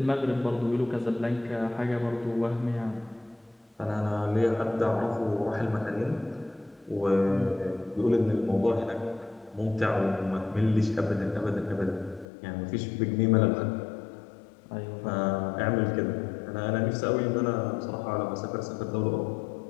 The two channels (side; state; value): right; drops out; at 12.2 s